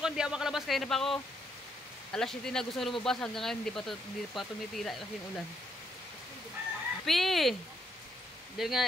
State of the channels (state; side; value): normal; both; correlation 0.74